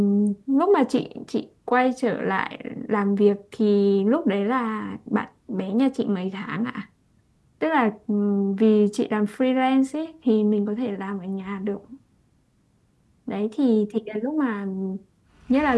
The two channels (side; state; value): both; identical; correlation 1.00